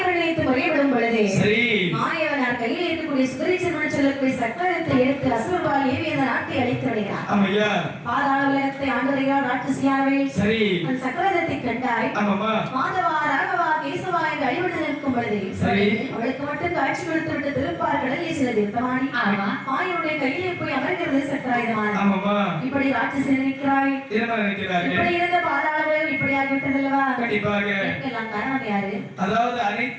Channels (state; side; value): identical; both; correlation 1.00